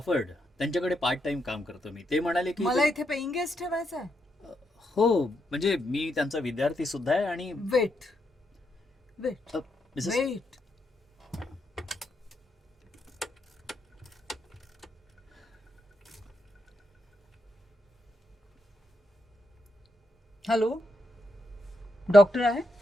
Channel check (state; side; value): normal; both; correlation 0.81